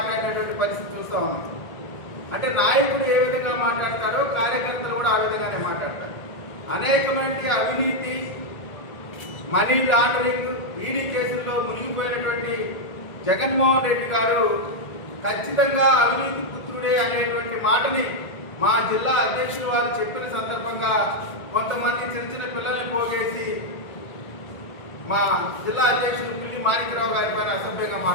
పరిస్థితి చూస్తూ ఉన్నాం. అంటే నాయకుడు ఏ విధంగా మాట్లాడతారో కార్యకర్తలు కూడా ఆ విధంగానే మాట్లాడతారు. అనేకమైన అవినీతి, మనీ లాండరింగ్, ఈడీ కేసుల్లో మునిగిపోయినటువంటి జగన్మోహన్ రెడ్డి గారు ఖచ్చితంగా అవినీతి పుత్రుడే అనేటువంటి మాటని మా జిల్లా అధ్యక్షులు వారు చెప్పిన సందర్భంగా కొంతమంది చిన్న చిన్న పిల్లల్ని పోగేసి మా జిల్లా అధ్యక్షులు పిల్లి మాణిక్యరావు గారి పైన అసభ్యంగా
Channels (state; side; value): late; right; 1.7 ms